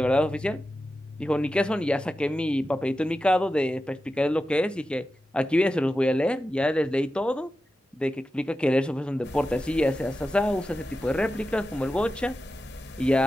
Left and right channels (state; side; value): normal; both; correlation 0.92